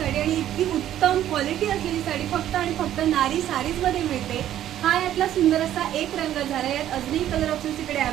आणि इतकी उत्तम क्वालिटी असलेली साडी फक्त आणि फक्त नारी साडीजमध्ये मिळते। हा यातला सुंदर असा एक रंग झाला। यात अजूनही कलर ऑप्शन्स इकडे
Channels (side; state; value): left; quieter; 11.9 dB